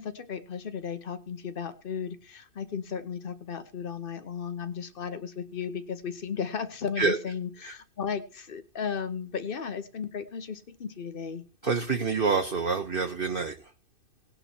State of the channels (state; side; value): late; right; 2.6 ms